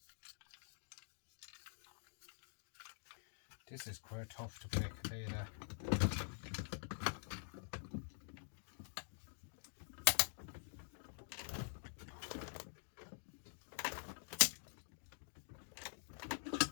This is quite tough to break, I'll tell you that.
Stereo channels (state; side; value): silent; right; digital silence